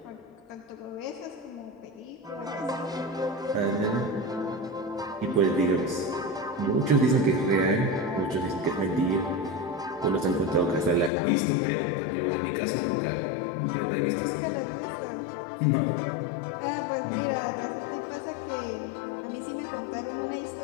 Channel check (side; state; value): right; drops out; at 11.1 s